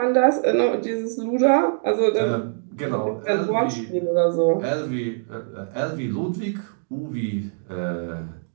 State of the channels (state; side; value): silent; left; digital silence